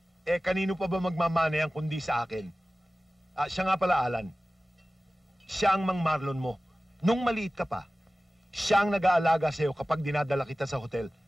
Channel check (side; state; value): both; normal; correlation 0.97